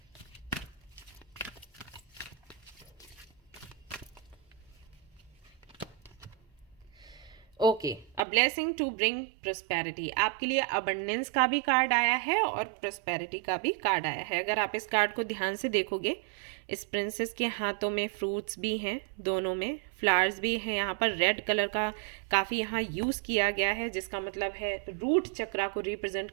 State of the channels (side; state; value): left; drops out; at 8.2 s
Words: Okay, a blessing to bring prosperity. आपके लिए अबंडेंस का भी कार्ड आया है और प्रोस्पेरिटी का भी कार्ड आया है। अगर आप इस कार्ड को ध्यान से देखोगे, इस प्रिंसेस के हाथों में फ्रूट्स भी हैं, दोनों में फ्लावर्स भी हैं। यहाँ पर रेड कलर का काफ़ी यहाँ यूज़ किया गया है, जिसका मतलब है रूट चक्रा को रिप्रेजेंट